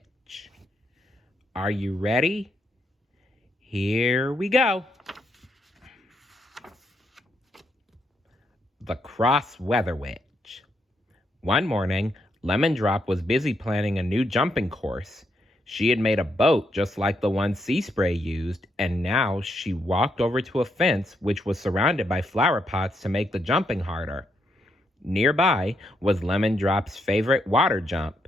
Are you ready? Here we go. The Cross Weather Witch. One morning, Lemon Drop was busy planning a new jumping course. She had made a boat just like the one Sea Spray used, and now she walked over to a fence which was surrounded by flower pots to make the jumping harder. Nearby was Lemon Drop's favorite water jump.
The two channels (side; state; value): both; normal; correlation 0.78